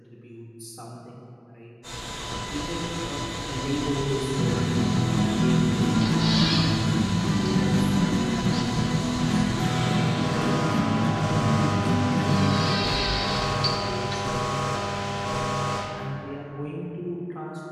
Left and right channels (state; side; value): identical; both; correlation 1.00